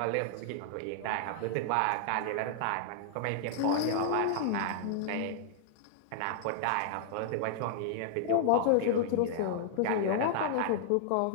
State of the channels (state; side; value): different; both; correlation -0.01